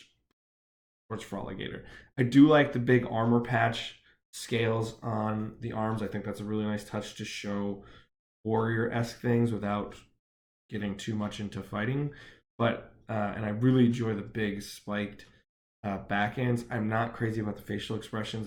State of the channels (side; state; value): both; identical; correlation 1.00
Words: towards Froligator. I do like the big armor patch scales on the arms. I think that's a really nice touch to show warrior-esque things without getting too much into fighting. But and I really enjoy the big spiked back ends. I'm not crazy about the facial expressions